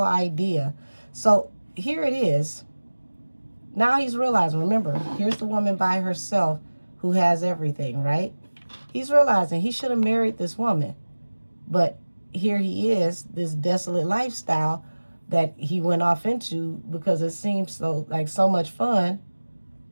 So here it is. Now he's realizing, remember, here's the woman by herself who has everything, right? He's realizing he should have married this woman. But here he is, this desolate lifestyle that he went off into because it seems so much fun.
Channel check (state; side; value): inverted; both; correlation -1.00